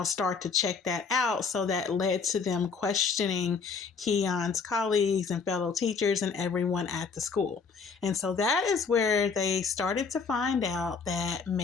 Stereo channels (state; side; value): quieter; right; 5.3 dB